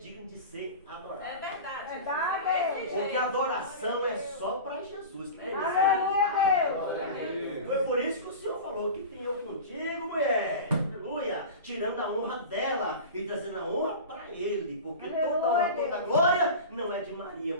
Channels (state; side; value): inverted; both; correlation -0.31